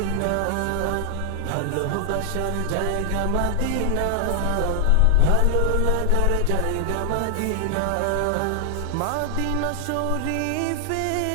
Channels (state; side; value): different; both; correlation 0.00